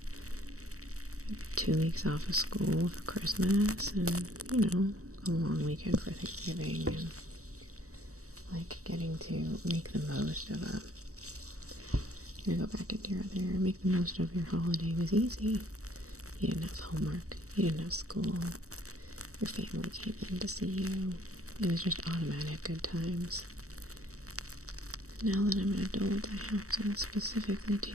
2 weeks off of school for Christmas and, a long weekend for Thanksgiving and like getting to make the most of go back into your other, make the most of your holiday was easy. You didn't have homework, you didn't have school, your family came in to see you. It was just automatic good times. Now that I'm an adult, I have to specifically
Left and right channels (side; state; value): left; late; 0.65 ms